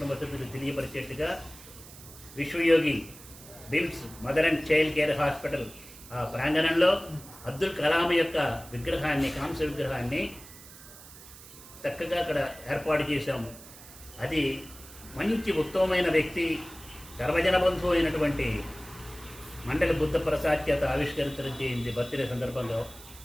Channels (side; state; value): right; noise; hiss, 18 dB below the sound